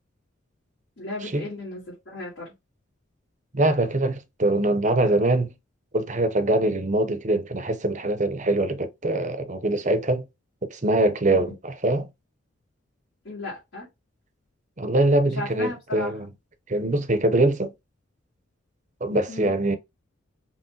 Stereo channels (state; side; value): normal; both; correlation 0.44